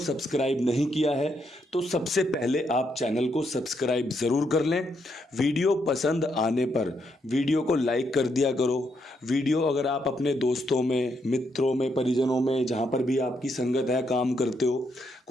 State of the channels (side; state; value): both; normal; correlation 0.77